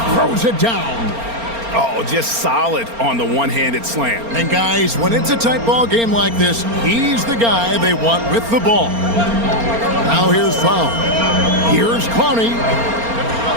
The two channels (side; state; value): left; late; 4.3 ms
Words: throws it down. Oh, just solid on the one-handed slam. And guys, when it's a tight ball game like this, he's the guy they want with the ball. Now here's foul. Here's Clowney.